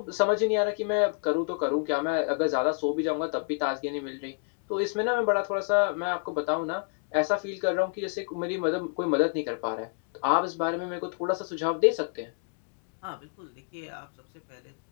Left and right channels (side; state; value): right; quieter; 39.3 dB